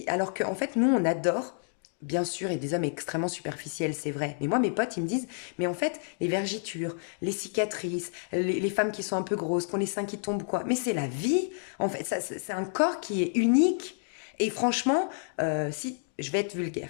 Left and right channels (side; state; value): right; silent; digital silence